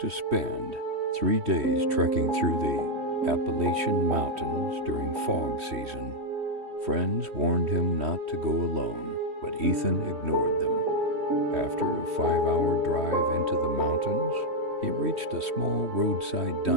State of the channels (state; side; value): late; left; 3.1 ms